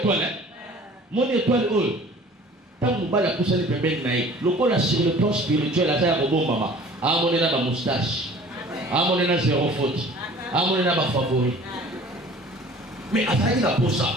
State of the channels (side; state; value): both; normal; correlation 0.48